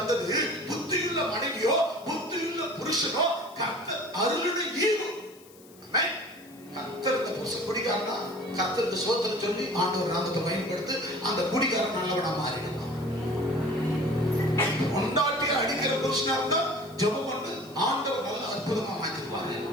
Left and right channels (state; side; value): noise; left; hiss, 24 dB below the sound